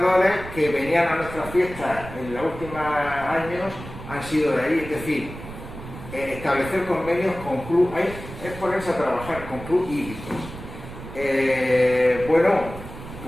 que venían a nuestras fiestas en los últimos años han sido de ahí. Es decir, establecer convenios con club, es ponerse a trabajar con club hípicos. Bueno,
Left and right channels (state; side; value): noise; right; rumble, 12 dB below the sound